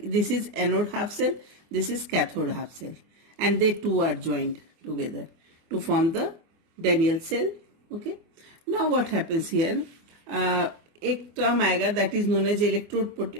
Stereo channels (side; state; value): left; late; 24 ms